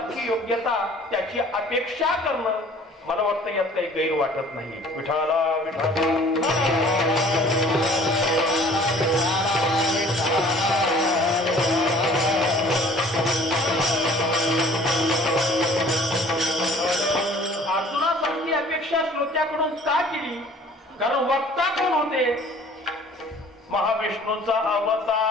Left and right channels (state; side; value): normal; both; correlation 0.51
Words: योग्यता, त्याची अपेक्षा करणं मला वाटतं यात काही गैर वाटत नाही. विठाला विठाला अर्जुनासारखी अपेक्षा श्रोत्याकडून का केली? कारण वक्ता कोण होते? महाविष्णूंचा